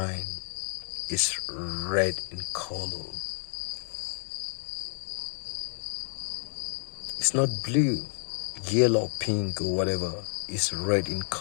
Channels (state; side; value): silent; right; digital silence